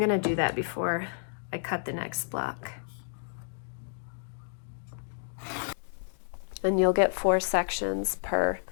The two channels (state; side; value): silent; right; digital silence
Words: do that before I cut the next block. And you'll get 4 sections per